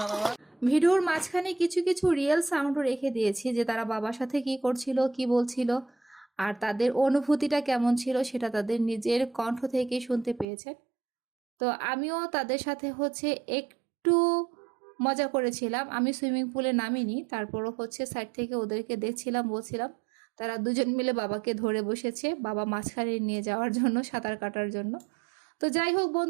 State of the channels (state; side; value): drops out; left; at 10.5 s